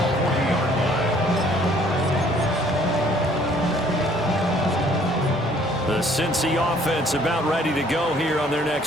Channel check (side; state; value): both; normal; correlation 0.59